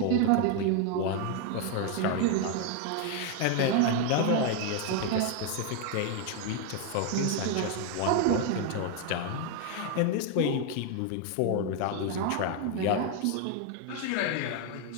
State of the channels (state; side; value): different; both; correlation 0.01